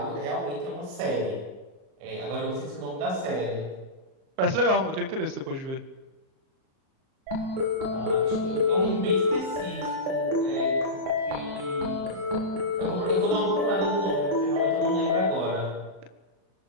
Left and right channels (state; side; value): late; left; 38 ms